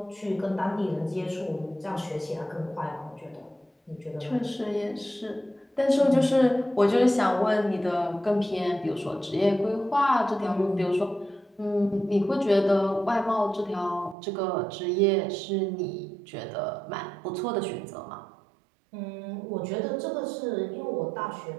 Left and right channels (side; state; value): left; drops out; at 14.2 s